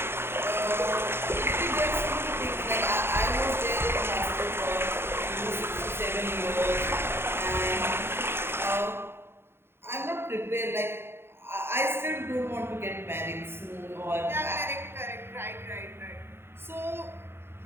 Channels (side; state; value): left; late; 0.11 ms